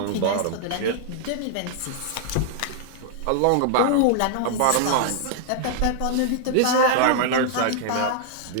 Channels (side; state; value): both; different; correlation -0.01